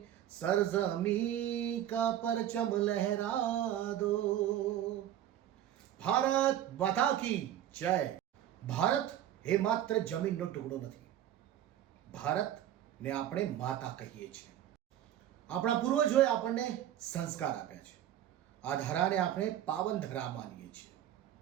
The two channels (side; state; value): left; quieter; 11.7 dB